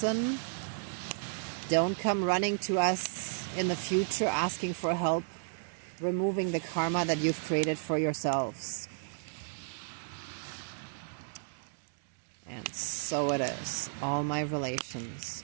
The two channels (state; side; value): silent; left; digital silence